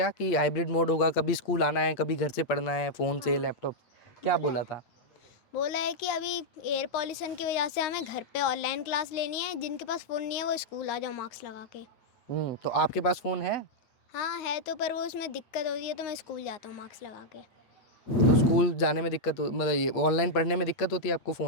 कि हाइब्रिड मोड होगा, कभी स्कूल आना है, कभी घर से पढ़ना है, फ़ोन से, लैपटॉप, क्या बोला था? बोला है कि अभी एयर पॉल्यूशन की वजह से हमें घर पे ऑनलाइन क्लास लेनी है। जिनके पास फ़ोन नहीं है वो स्कूल आ जाओ मार्क्स लगा के। तो आपके पास फ़ोन है? हाँ है तो, पर वो उसमें दिक्कत होती है तो मैं स्कूल जाता हूँ मार्क्स लगा के। तो स्कूल जाने में दिक्कत मतलब ये ऑनलाइन पढ़ने में दिक्कत होती है आपको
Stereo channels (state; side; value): late; right; 8.5 ms